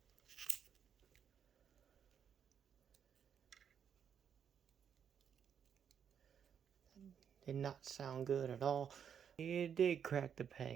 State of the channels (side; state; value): left; quieter; 7.9 dB